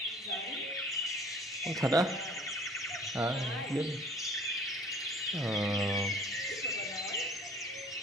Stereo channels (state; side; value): normal; both; correlation 0.51